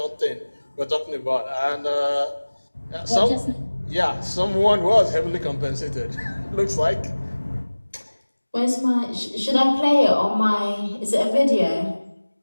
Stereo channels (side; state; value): both; inverted; correlation -1.00